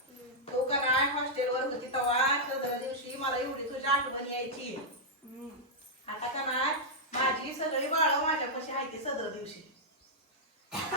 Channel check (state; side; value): normal; both; correlation -0.07